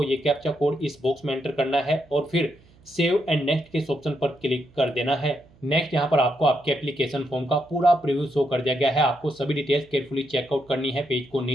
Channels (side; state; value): right; noise; hum, 28 dB below the sound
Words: ये कैप्चा कोड इस बॉक्स में एंटर करना है और फिर सेव एंड नेक्स्ट के इस ऑप्शन पर क्लिक कर देना है। नेक्स्ट यहाँ पर आपको आपके एप्लीकेशन फॉर्म का पूरा प्रीव्यू शो कर दिया गया है। आपको सभी डिटेल्स केयरफुली चेकआउट करनी है, पेज को